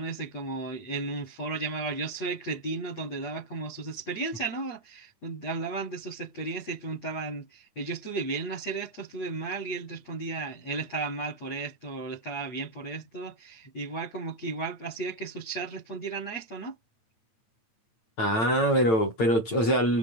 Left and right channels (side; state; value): right; late; 9.0 ms